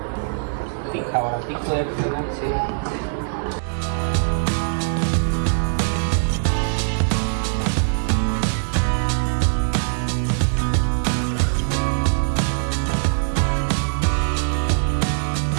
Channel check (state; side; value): silent; left; digital silence